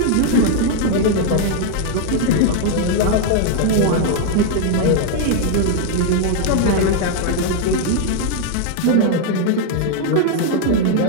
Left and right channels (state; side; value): different; both; correlation 0.00